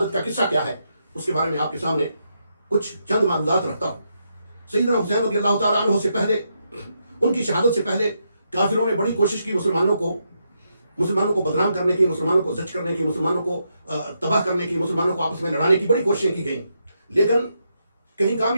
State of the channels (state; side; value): inverted; both; correlation -0.81